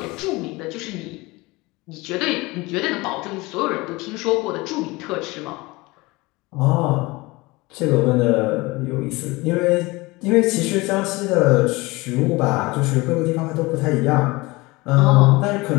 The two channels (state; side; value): quieter; right; 22.7 dB